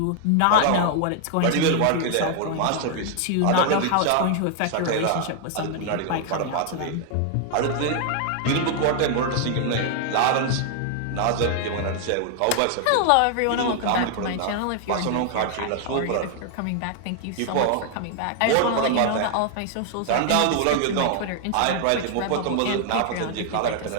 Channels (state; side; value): different; both; correlation 0.00